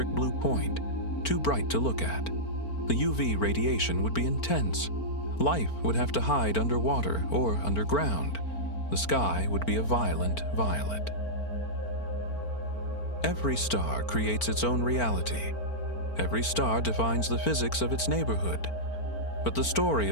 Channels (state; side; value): late; right; 4.4 ms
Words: blue point, too bright to look at. The UV radiation would be intense. Life would have to hide underwater or underground. The sky would be a violent violet. Every star creates its own reality. Every star defines the physics of its neighborhood. But the story